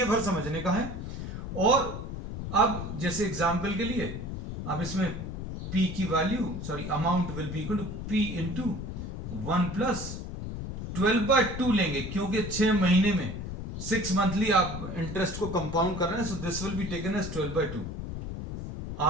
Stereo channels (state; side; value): noise; left; rumble, 7 dB below the sound